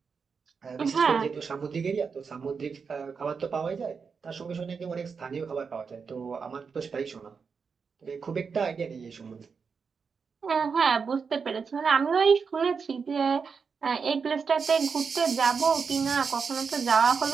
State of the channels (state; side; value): quieter; left; 5.6 dB